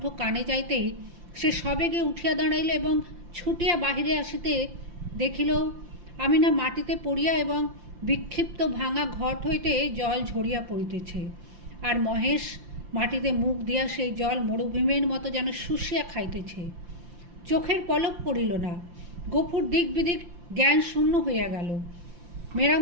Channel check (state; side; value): late; left; 5.8 ms